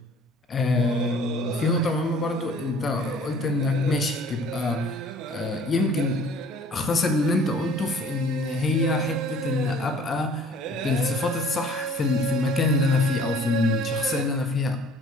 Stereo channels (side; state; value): both; normal; correlation 0.52